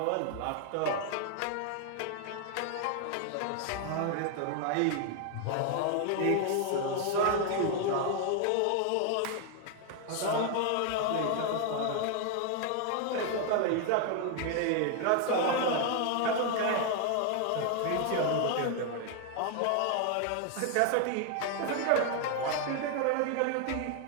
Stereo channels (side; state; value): both; different; correlation 0.00